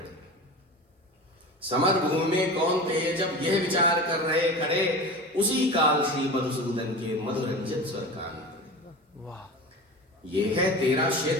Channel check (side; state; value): both; normal; correlation 0.31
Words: समर भूमि में कौन थे जब यह विचार कर रहे खड़े, उसी काल श्री मधुसूदन के मधुरंजित स्वर कान पड़े। वाह। यह है तेरा